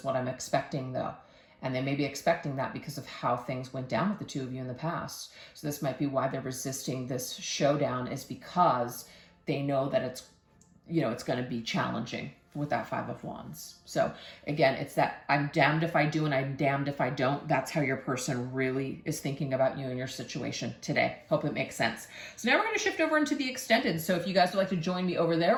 what I'm expecting though. And they may be expecting that because of how things went down with the 2 of you in the past. So this might be why they're resisting this showdown, is because they know that it's going to be challenging with that 5 of Wands. So again, it's that I'm damned if I do and I'm damned if I don't. That's how your person really is thinking about you and your situation today. Hope it makes sense. So now we're going to shift over into the extended. So if you guys would like to join me over there,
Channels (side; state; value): both; identical; correlation 1.00